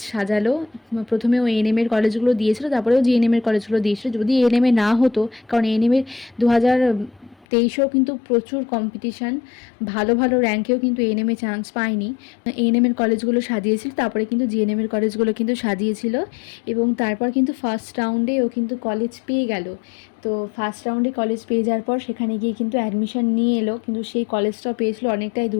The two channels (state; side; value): drops out; right; at 7.5 s